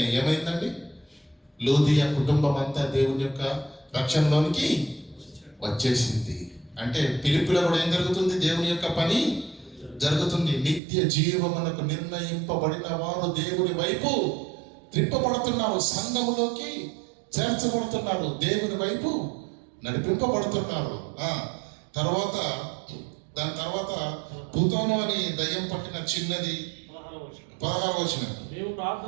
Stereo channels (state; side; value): drops out; left; at 10.8 s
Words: ఏమైందండి? లూదియా కుటుంబం అంతా దేవుని యొక్క రక్షణలోనికి వచ్చేసింది. అంటే ఫిలిప్పిలో కూడా ఏం జరుగుతుంది? దేవుని యొక్క పని జరుగుతుంది. నిత్య జీవమునకు నిర్ణయింపబడిన వారు దేవుని వైపు త్రిప్పబడుతున్నారు, సంఘములోకి చేర్చబడుతున్నారు, దేవుని వైపు నడిపింపబడుతున్నారు. దాని తర్వాత భూతోను అని దయ్యం పట్టిన చిన్నది 16వ వచనం. మేము